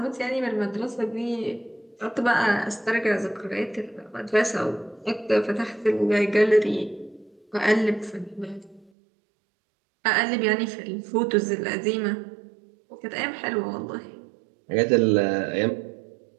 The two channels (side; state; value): left; drops out; at 8.9 s